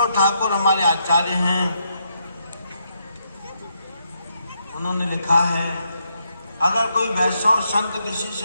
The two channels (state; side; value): inverted; both; correlation -0.78